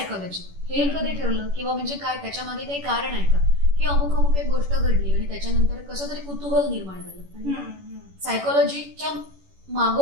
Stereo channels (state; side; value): late; left; 11 ms